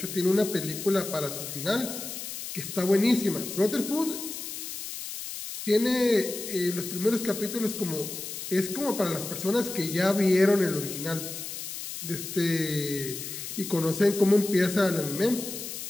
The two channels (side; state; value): left; noise; hiss, 8 dB below the sound